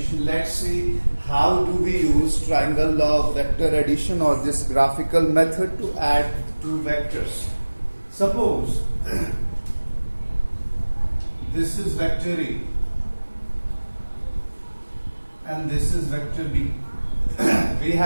Let's see how do we use triangle law of vector addition or this graphical method to add two vectors. Suppose this is vector A and this is vector B. We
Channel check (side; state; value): both; inverted; correlation -1.00